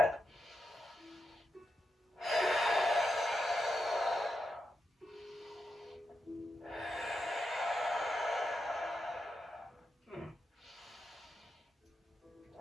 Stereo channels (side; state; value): both; normal; correlation 0.86